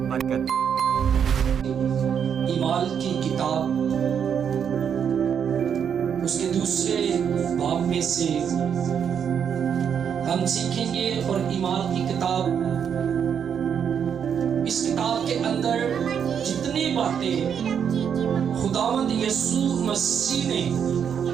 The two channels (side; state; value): left; quieter; 7.8 dB